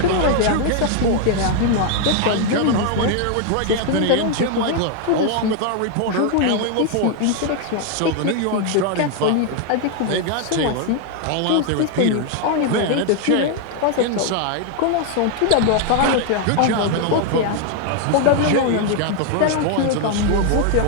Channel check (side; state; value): both; different; correlation 0.00